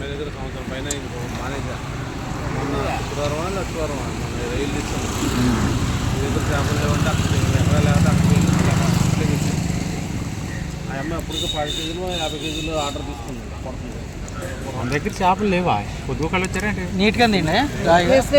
దగ్గర సంవత్సరం పైన మానేజా. మొన్న శుక్రవారం లక్షవారం మొన్న రైలు తీసుకున్నాం. మీ దగ్గర చేపలు లేవంటే అక్కడ ఎక్కడ లేకపోతే అక్కడికి వెళ్ళి ఆ అమ్మాయి అప్పటికి 10 కేజీలు 50 కేజీలు ఆర్డర్ తీసుకుంది. పడుతుంది మన దగ్గర చేపలు లేవా? పొద్దు కళ్ళు వచ్చారంటే నీట్గా తిండి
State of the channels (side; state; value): both; identical; correlation 1.00